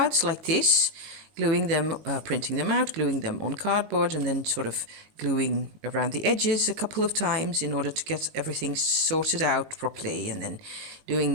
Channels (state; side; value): late; left; 19 ms